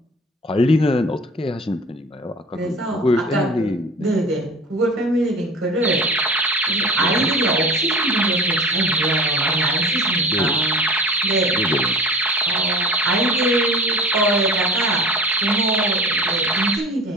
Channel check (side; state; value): both; normal; correlation 0.38